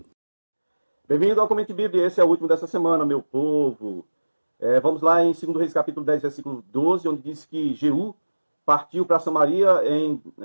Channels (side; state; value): both; inverted; correlation -1.00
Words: Bem-vindo ao Comente Bíblia, esse é o último dessa semana, meu povo. Vamos lá em 2 Reis capítulo 10, versículo 12, onde diz que Jeú partiu para Samaria